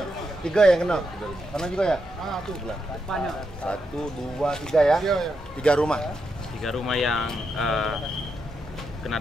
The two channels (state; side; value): normal; both; correlation 0.83